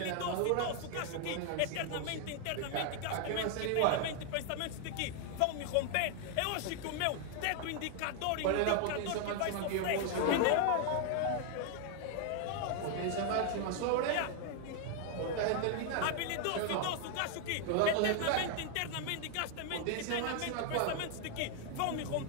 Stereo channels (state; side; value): different; both; correlation 0.00